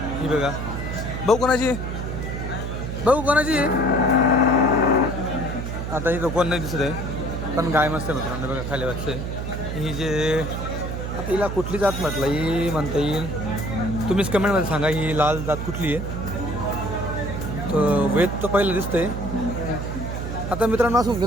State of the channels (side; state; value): right; noise; hum, 5 dB below the sound